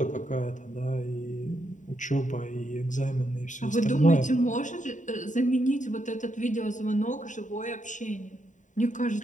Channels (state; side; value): late; right; 0.36 ms